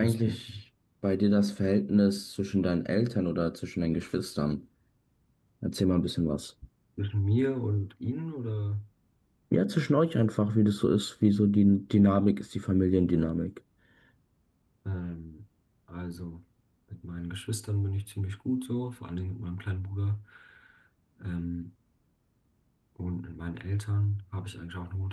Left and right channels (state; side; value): identical; both; correlation 1.00